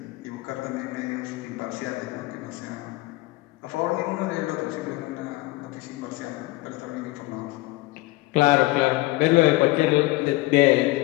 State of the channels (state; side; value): quieter; right; 19.7 dB